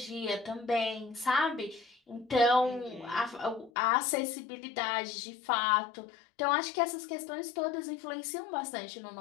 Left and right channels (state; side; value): drops out; right; at 3.7 s